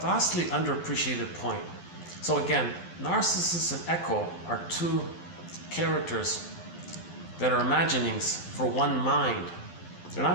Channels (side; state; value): right; late; 11 ms